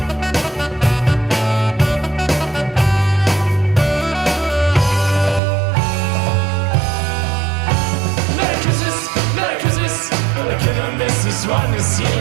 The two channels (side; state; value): left; drops out; at 5.4 s